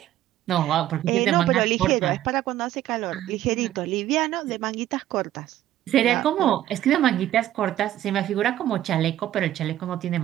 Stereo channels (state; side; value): quieter; left; 13.0 dB